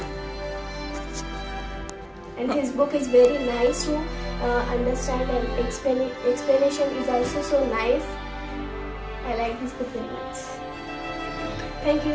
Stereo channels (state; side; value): identical; both; correlation 1.00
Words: And his book is very nice to understand, and explanation is also so nice. I like this book very much. Thank